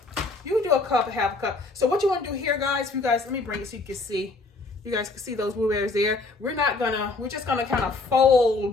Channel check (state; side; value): quieter; right; 3.6 dB